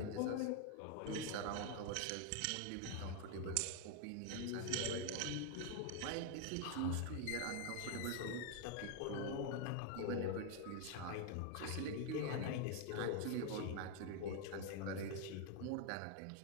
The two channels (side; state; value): both; different; correlation 0.01